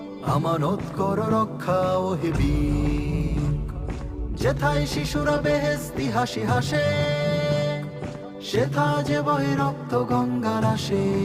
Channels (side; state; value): both; identical; correlation 1.00